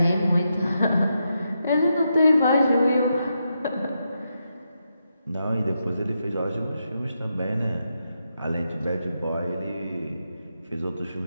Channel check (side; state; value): both; inverted; correlation -0.84